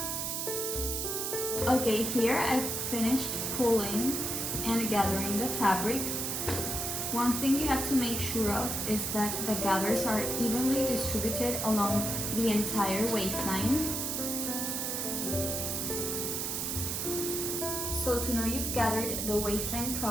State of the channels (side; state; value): right; noise; hiss, 1 dB below the sound